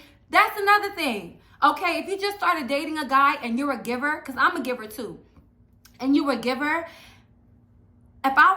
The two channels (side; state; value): both; identical; correlation 1.00